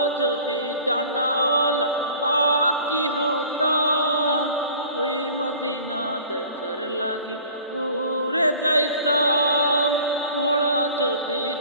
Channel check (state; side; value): inverted; both; correlation -0.47